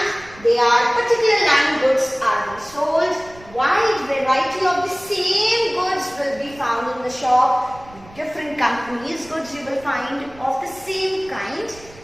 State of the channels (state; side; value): noise; right; rumble, 22 dB below the sound